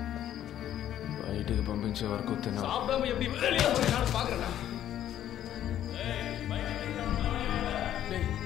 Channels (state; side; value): quieter; right; 11.4 dB